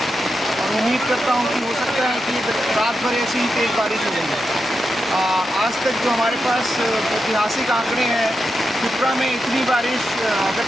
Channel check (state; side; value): normal; both; correlation 0.87